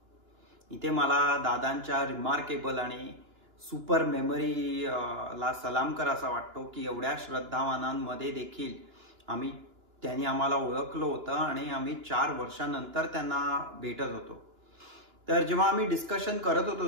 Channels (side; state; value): left; late; 2.9 ms